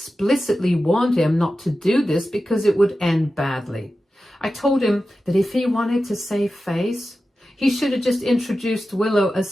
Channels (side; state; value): both; normal; correlation 0.93